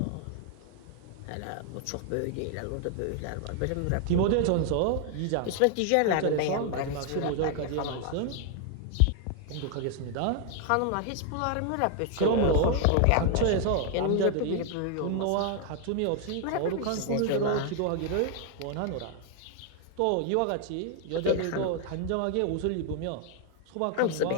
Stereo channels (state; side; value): different; both; correlation 0.00